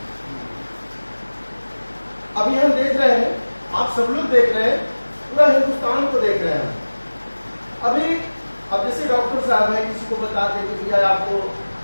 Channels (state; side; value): inverted; both; correlation -1.00